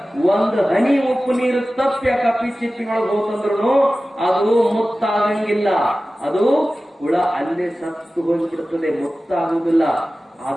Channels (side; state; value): both; normal; correlation 0.96